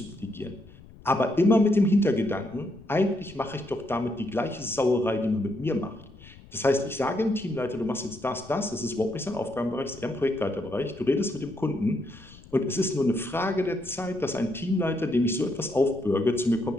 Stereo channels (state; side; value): noise; left; rumble, 21 dB below the sound